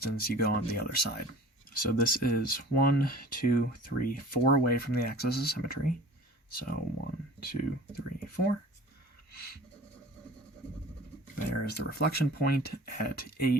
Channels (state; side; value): normal; both; correlation 0.44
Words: you go on the other side. So this is 1, 2, 3, 4 away from the axis of symmetry. So 1, 2, 3, 4. There is the reflection point at